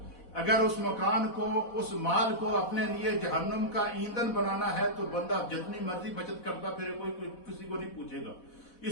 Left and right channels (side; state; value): right; late; 4.1 ms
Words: अगर उस मकान को, उस माल को अपने लिए जहन्नुम का ईंधन बनाना है तो बंदा जितनी मर्जी बचत करता फिर कोई किसी को नहीं पूछेगा।